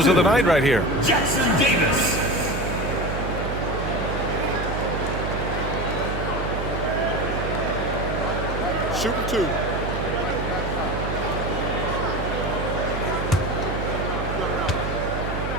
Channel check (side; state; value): right; noise; hum, 4 dB below the sound